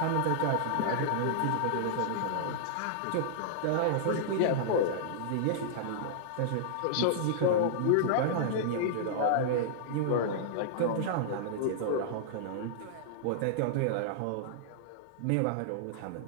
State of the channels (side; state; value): both; different; correlation -0.02